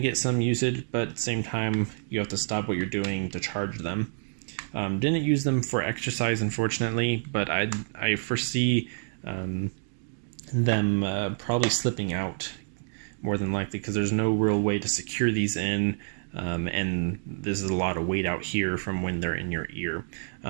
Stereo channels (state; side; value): silent; left; digital silence